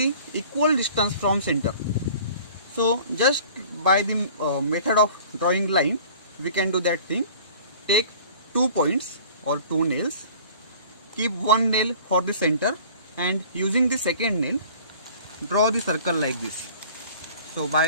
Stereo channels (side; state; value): both; inverted; correlation -0.47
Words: equal distance from center. So just by the method of drawing line, we can do that thing. Take 2 points or 2 nails, keep one nail for the center and using the second nail, draw the circle like this. So